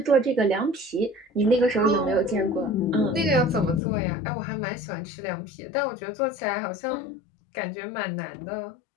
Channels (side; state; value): right; drops out; at 3.8 s